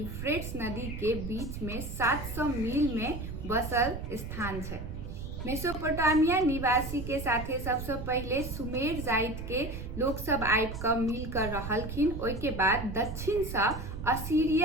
नदी के बीच में 700 मील में बसल स्थान छै। मेसोपोटामिया निवासी के साथे सबसे पहले सुमेर जाति के लोग सब आबि क मिल कर रहलखिन। ओइ के बाद दक्षिण से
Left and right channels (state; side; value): noise; right; rumble, 7 dB below the sound